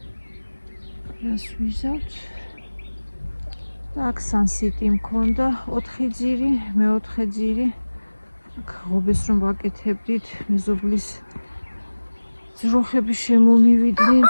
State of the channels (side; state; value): both; inverted; correlation -1.00